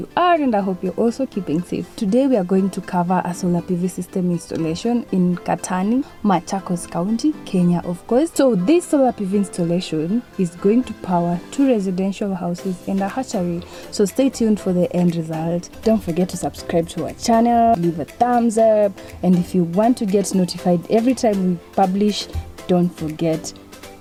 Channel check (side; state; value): both; identical; correlation 1.00